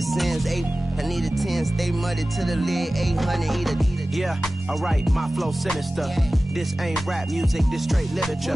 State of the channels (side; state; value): both; normal; correlation 0.97